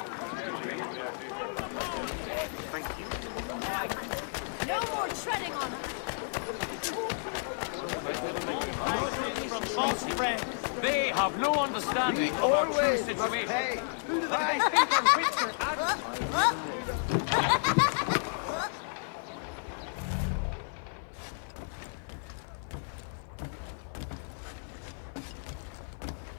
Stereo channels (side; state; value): right; silent; 56 dB below the other